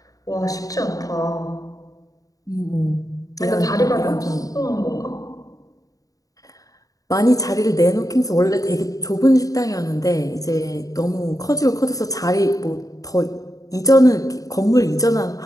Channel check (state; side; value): late; right; 0.17 ms